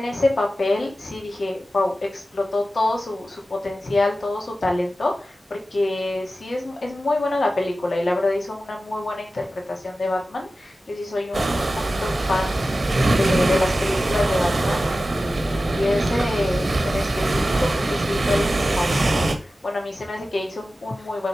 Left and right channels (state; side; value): normal; both; correlation 0.94